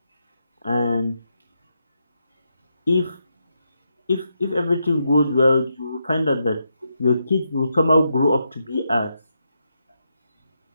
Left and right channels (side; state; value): both; inverted; correlation -0.83